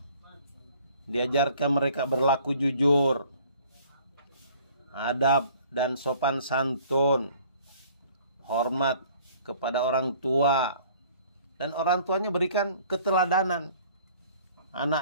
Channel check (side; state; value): both; inverted; correlation -0.55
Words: diajarkan mereka berlaku jujur, adab dan sopan santun, hormat kepada orang tua, dan orang tuanya berikan keteladanan.